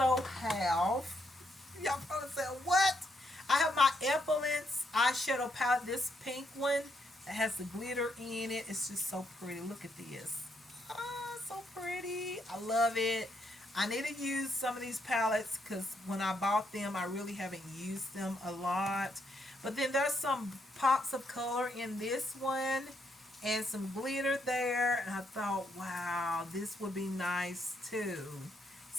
have, y'all probably said, what? I have my Epilance eyeshadow palette, this pink one that has the glitter in it. It's just so pretty. Look at this. Oh, so pretty. I love it. I need to use some of these palettes because when I bought them, I really haven't used them a lot. But then there's some pops of color in this one and some glitter there. And I thought, wow, this would be nice too.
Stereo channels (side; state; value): both; normal; correlation 0.76